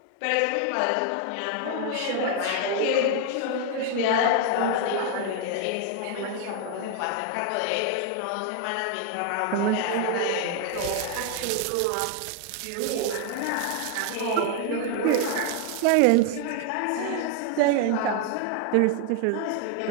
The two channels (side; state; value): both; different; correlation 0.00